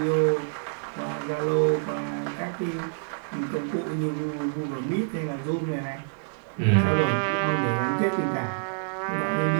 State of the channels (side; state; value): left; silent; 60 dB below the other